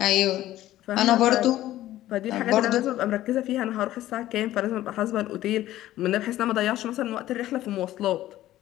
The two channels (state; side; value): quieter; right; 14.4 dB